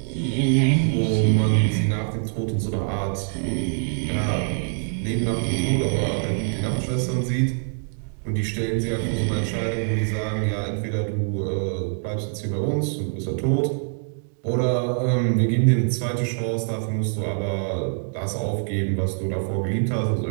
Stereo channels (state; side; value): silent; left; 62 dB below the other